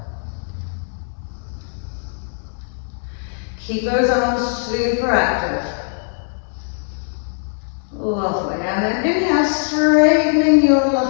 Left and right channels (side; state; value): right; silent; digital silence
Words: Keep those arms super active. Lovely. And then inhale, straightening your